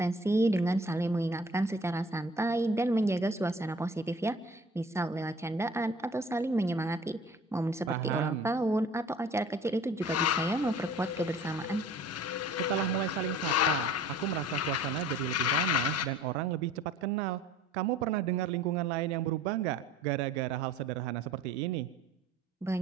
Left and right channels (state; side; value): normal; both; correlation 0.49